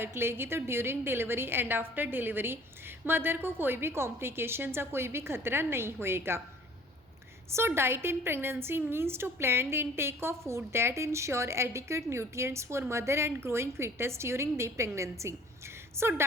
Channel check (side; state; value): both; normal; correlation 0.51